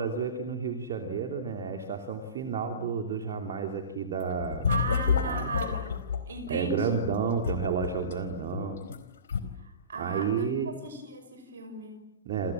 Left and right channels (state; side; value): inverted; both; correlation -0.33